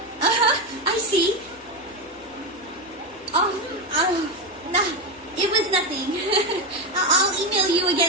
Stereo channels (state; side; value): normal; both; correlation 0.12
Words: I see. Nah, it was nothing. I'll email you